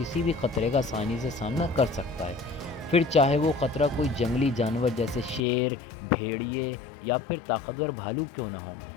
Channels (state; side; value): drops out; right; at 5.4 s